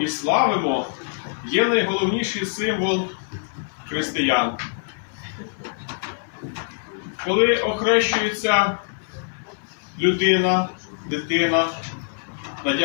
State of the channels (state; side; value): silent; right; digital silence